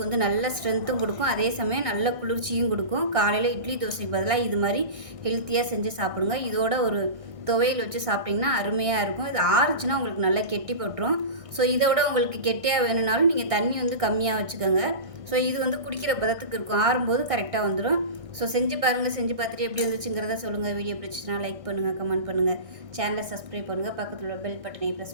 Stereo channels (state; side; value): late; left; 1.6 ms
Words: வந்து நல்ல ஸ்ட்ரென்த்தும் கொடுக்கும், அதே சமயம் நல்ல குளிர்ச்சியும் கொடுக்கும். காலையில் இட்லி தோசைக்கு பதிலாக இது மாதிரி ஹெல்த்தியாக செஞ்சு சாப்பிடுங்க. இதோட ஒரு துவையல் வச்சு சாப்பிட்டிங்கன்னா அருமையாக இருக்கும். இது ஆறுச்சுன்னா உங்களுக்கு நல்லா கெட்டி போட்டுரும். ஸோ இதை விட உங்களுக்கு கெட்டியாக வேணும்னாலும் நீங்கள் தண்ணி வந்து கம்மியாக வச்சுக்கோங்க. ஸோ இது வந்து குடிக்கிற பதத்துக்கு இருக்கும். ஆறும்போது கரெக்டாக வந்துடும். ஸோ செஞ்சு பாருங்கள். செஞ்சு பார்த்துட்டு எப்படி வந்துச்சுங்கிறத சொல்லுங்கள். வீடியோ பிடிச்சிச்சுன்னா லைக் பண்ணுங்கள், கமெண்ட் பண்ணுங்கள், சேனலை சப்ஸ்கிரைப் பண்ணுங்கள், பக்கத்தில் உள்ள பெல் பட்டனை